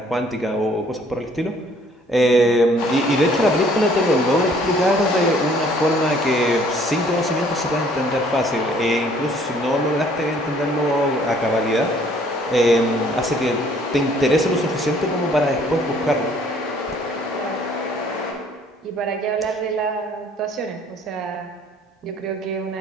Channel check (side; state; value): both; normal; correlation 0.59